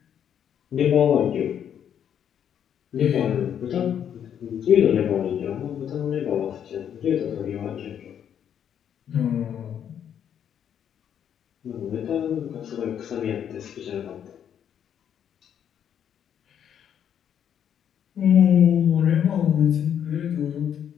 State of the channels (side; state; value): right; quieter; 9.0 dB